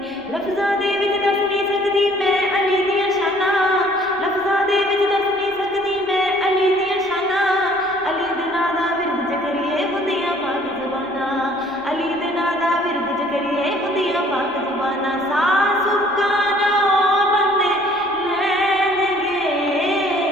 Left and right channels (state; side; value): noise; left; rumble, 29 dB below the sound